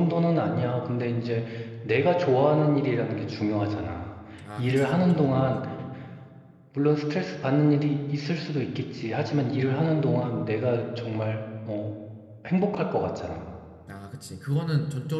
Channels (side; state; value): both; identical; correlation 1.00